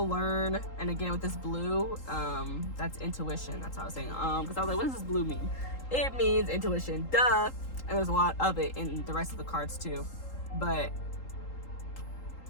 learn, and again with this blue, that's intuition. That's what I was saying. Because I was like, what does this blue mean? It means intuition. Duh. And there's a lot of it in the rest of the cards too. But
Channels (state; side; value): late; right; 3.8 ms